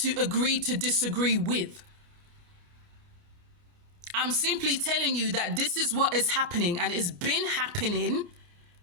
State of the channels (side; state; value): left; late; 28 ms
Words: agree to disagree with? I'm simply telling you that this is what is happening, and it's been happening